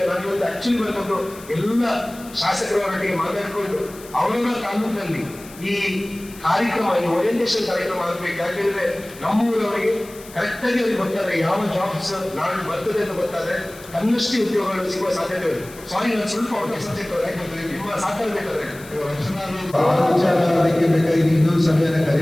ನಾನು ಇವತ್ತು ಆಕ್ಚುಲಿ ಬಂದದ್ದು ಎಲ್ಲ ಶಾಸಕರವರೊಟ್ಟಿಗೆ ಮಾತಾಡಿಕೊಂಡು ಅವರ ತಾಲೂಕಲ್ಲಿ ಈ ಕಾರ್ಯಕ್ರಮ ಈ ಓರಿಯೆಂಟೇಷನ್ ಕಾರ್ಯಕ್ರಮ ಆಗಬೇಕು. ಯಾಕೆಂದ್ರೆ ನಮ್ಮೂರವರಿಗೆ ಕರೆಕ್ಟ್ ಆಗಿ ಅವ್ರಿಗೆ ಗೊತ್ತಾದ್ರೆ ಯಾವ ಜಾಬ್ಸ್ ನಾಳೆ ಬರ್ತದೆ ಅಂತ ಗೊತ್ತಾದ್ರೆ ತನ್ನಷ್ಟೇ ಉದ್ಯೋಗಗಳು ಸಿಗುವ ಸಾಧ್ಯತೆ ಇದೆ. ಸಾರಿ, ನಾನು ಸ್ವಲ್ಪ ನಿಮ್ಮ ಸಾಕಾಗಬೇಕಾದ್ರೆ ಅದಕ್ಕೆ ಬೇಕಾಗಿ ಇನ್ನೊಂದು ಸಭೆಯನ್ನ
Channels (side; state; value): left; noise; hiss, 19 dB below the sound